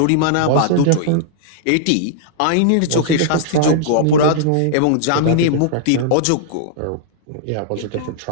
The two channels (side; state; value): both; different; correlation -0.01